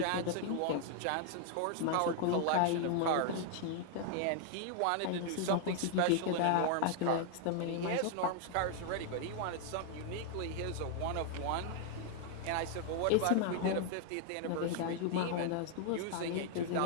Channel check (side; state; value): both; different; correlation 0.00